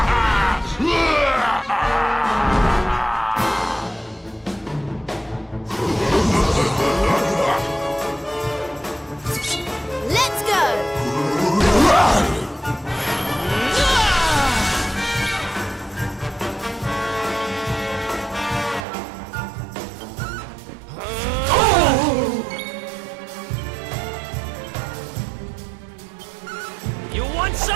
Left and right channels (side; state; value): left; drops out; at 18.9 s